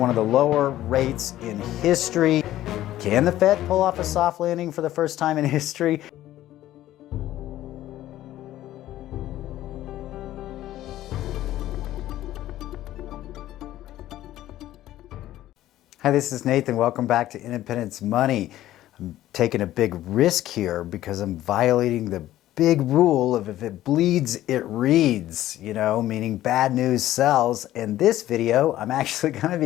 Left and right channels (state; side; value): quieter; right; 14.0 dB